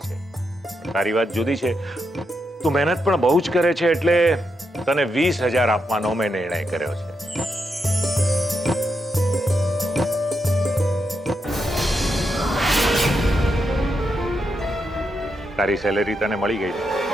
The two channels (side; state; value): both; normal; correlation 0.83